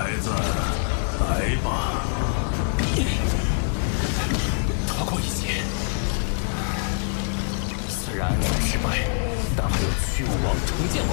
子，来吧！逃过一劫。虽然暗算失败，但还有驱雾王、重剑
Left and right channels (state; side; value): silent; right; 62 dB below the other